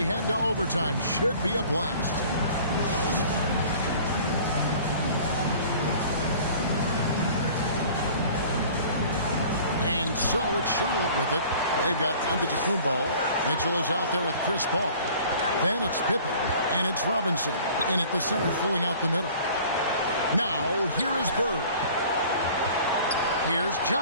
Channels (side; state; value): both; inverted; correlation -0.48